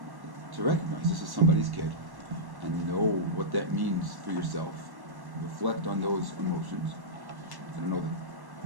to recognize this is somebody's kid and know what that means for yourself. Reflect on those emotions. I don't know that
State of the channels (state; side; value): late; left; 1.1 ms